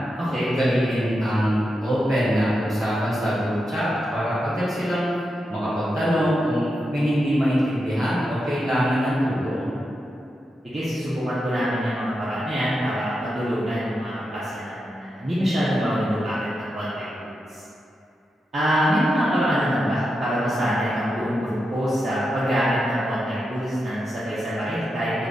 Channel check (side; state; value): both; normal; correlation 0.87